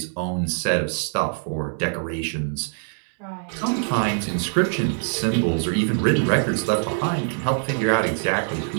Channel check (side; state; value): left; silent; digital silence